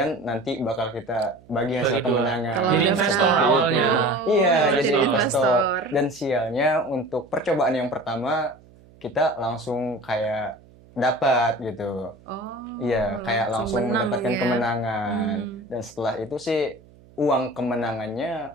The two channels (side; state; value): right; noise; hum, 26 dB below the sound